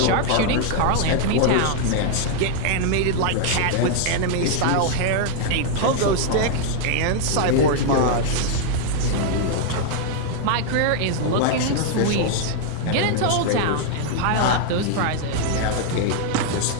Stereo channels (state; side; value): different; both; correlation 0.00